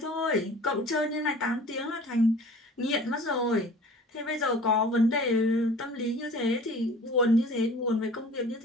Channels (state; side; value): normal; both; correlation 0.45